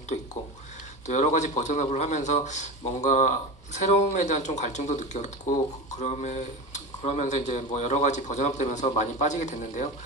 있고 또 여러 가지 버전업을 하면서 뭔가 새로움에 대한 좀 갈증도 느꼈고 그러면서 이제 뭐 여러 가지 버전업 되면서 많이 빠지게 됐는데요.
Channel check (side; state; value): both; normal; correlation 0.25